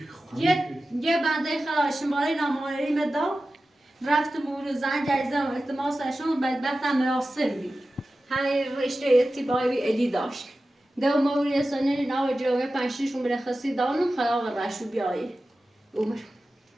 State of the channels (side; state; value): both; normal; correlation 0.94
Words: یه بنده خدا شماره ناماری مدا رفت مور زنگ عزیزم التماسشون بدبختم مراسل بی های رشته اتباعی بی ادی داشت دو موری سنین ناو جوه پنشیشون برخصی دانم خلاق رشو بیایی عمر